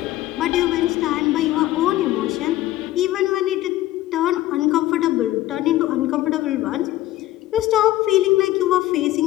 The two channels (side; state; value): right; quieter; 15.2 dB